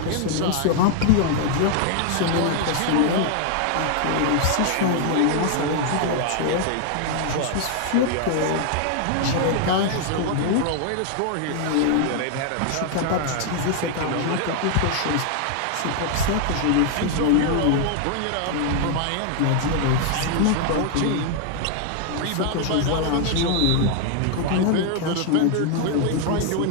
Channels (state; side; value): different; both; correlation 0.00